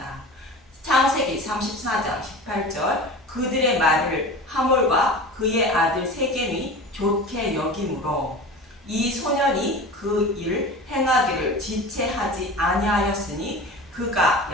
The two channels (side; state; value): both; normal; correlation 0.34